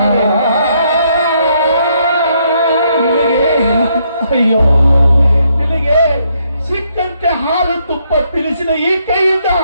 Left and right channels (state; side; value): inverted; both; correlation -0.73